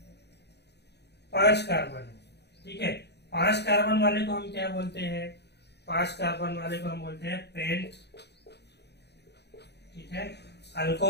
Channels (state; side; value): late; right; 0.49 ms